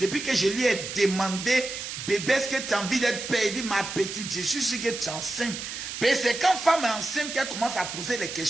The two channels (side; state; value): right; noise; hiss, 7 dB below the sound